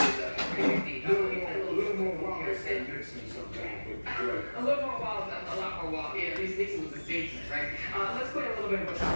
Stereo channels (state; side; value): inverted; both; correlation -1.00